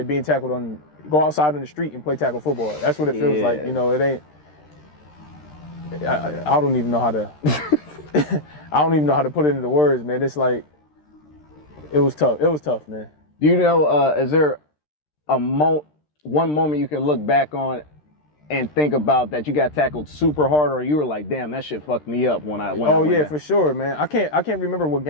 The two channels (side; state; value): right; late; 13 ms